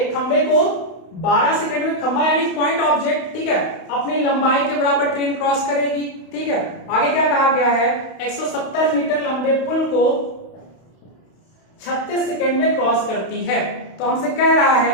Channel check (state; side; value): late; right; 32 ms